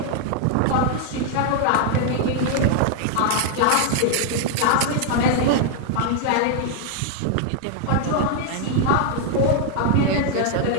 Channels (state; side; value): different; both; correlation 0.00